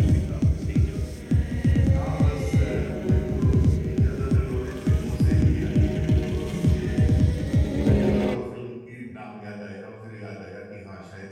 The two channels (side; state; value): both; identical; correlation 1.00